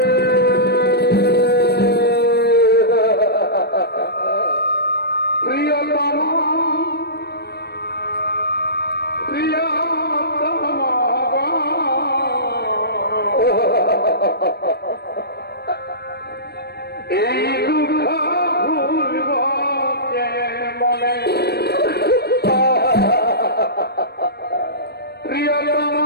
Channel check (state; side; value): late; right; 0.47 ms